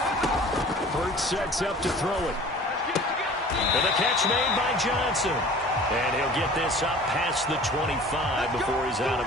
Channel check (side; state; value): both; normal; correlation 0.45